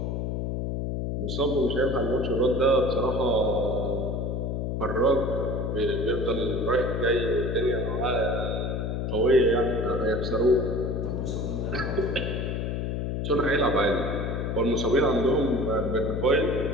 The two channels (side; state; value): left; noise; hum, 1 dB below the sound